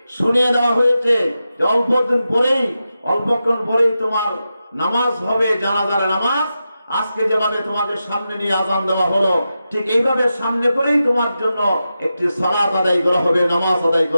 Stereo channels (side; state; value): both; inverted; correlation -0.90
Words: শুনিয়ে দেওয়া হয়েছে যে অল্পক্ষণ পরেই তোমার নামাজ হবে, জানাজার নামাজ। আজকে যেভাবে তোমাকে সামনে নিয়ে আজান দেওয়া হলো, ঠিক এইভাবে সামনে করেই তোমার জন্য একটি সালাত আদায় করা হবে, নামাজ আদায়